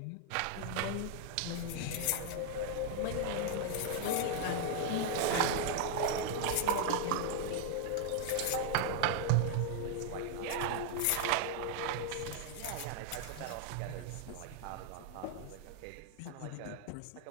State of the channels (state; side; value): different; both; correlation 0.00